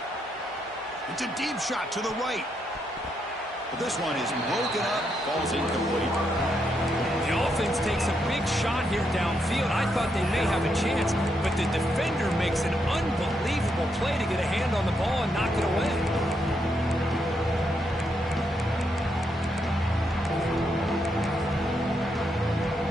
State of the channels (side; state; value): both; normal; correlation 0.79